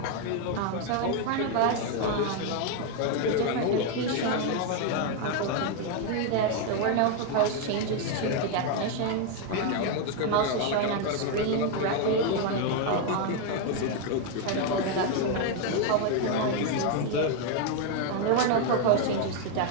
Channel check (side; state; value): both; different; correlation 0.01